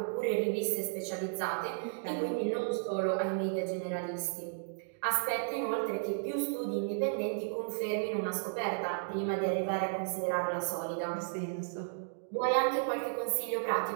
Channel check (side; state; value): left; silent; digital silence